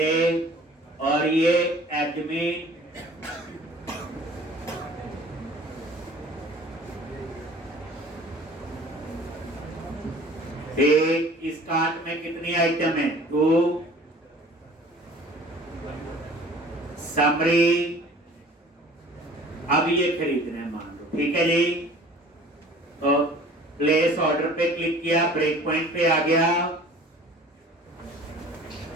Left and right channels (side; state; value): both; normal; correlation 0.48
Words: और ये एडमिन एक। इस कार्ट में कितनी आइटम है? 2। समरी, अब ये खरीदना है मान लो, ठीक है जी। तो प्लेस ऑर्डर पे क्लिक किया, ब्रेक पॉइंट पे आ गया।